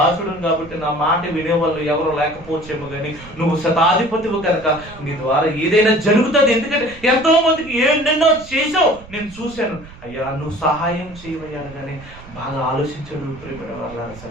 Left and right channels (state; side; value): noise; right; rumble, 19 dB below the sound